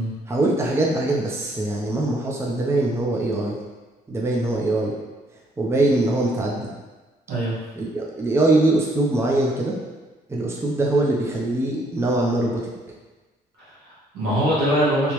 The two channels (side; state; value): both; normal; correlation 0.67